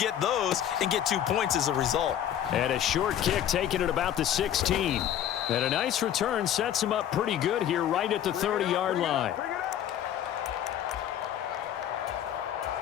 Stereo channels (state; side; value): quieter; right; 10.6 dB